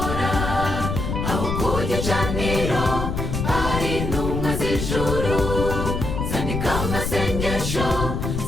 Aho ku gicaniro hari intumwa z'ijuru, zandika amasengesho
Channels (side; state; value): left; noise; rumble, 2 dB below the sound